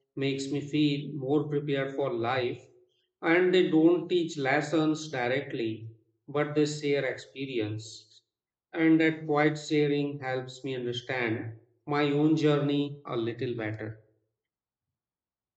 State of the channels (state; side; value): identical; both; correlation 1.00